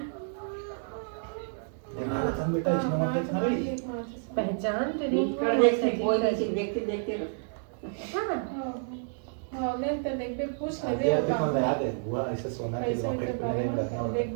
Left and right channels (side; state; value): left; silent; digital silence